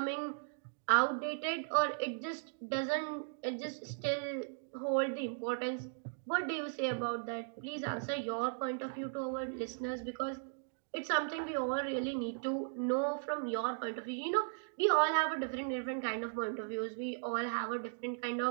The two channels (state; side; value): silent; left; digital silence